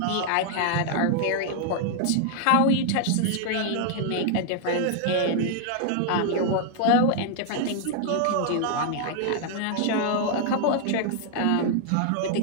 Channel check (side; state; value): both; different; correlation -0.01